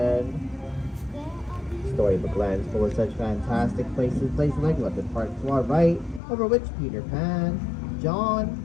Storybook Land is full of such fantastic places like London Park to our right, over which Peter Pan,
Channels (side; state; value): right; drops out; at 6.2 s